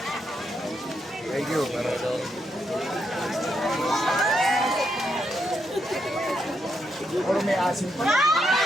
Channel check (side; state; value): both; normal; correlation 0.79